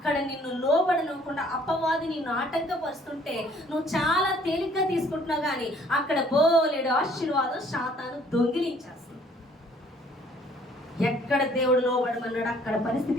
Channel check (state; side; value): normal; both; correlation 0.59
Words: నిన్ను లోబడనివ్వకుండా అపవాది నిన్ను ఆటంకపరుస్తుంటే నువ్వు చాలా తేలిగ్గా తీసుకుంటున్నావు, కానీ అక్కడ బోలెడు ఆశీర్వాదం శాతాను దొంగిలించేస్తుంది. ఎక్కడ దేవుడు లోబడమన్నాడు అక్కడ